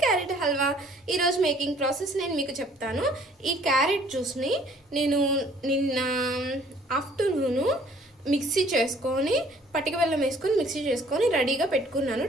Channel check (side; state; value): both; normal; correlation 0.58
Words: క్యారెట్ హల్వా ఈరోజు మేకింగ్ ప్రాసెస్ నేను మీకు చెప్తాను. ఈ క్యారెట్ జ్యూస్ని నేను నిన్న ఆఫ్టర్నూను మిక్సీ చేసుకొని పటిక బెల్లం వేసుకొని మిక్సీ చేసుకొని రెడీగా పెట్టుకున్నాను.